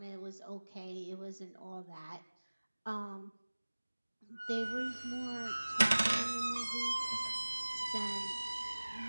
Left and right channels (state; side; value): inverted; both; correlation -1.00